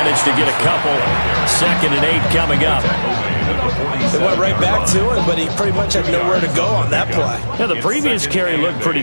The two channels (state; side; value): inverted; both; correlation -1.00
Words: to get a couple. 2nd and 8 coming up. They went right back to him, but he pretty much had nowhere to go on that play. Yeah, the previous carry looked pretty